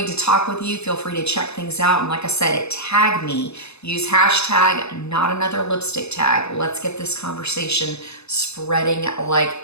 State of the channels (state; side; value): late; right; 0.80 ms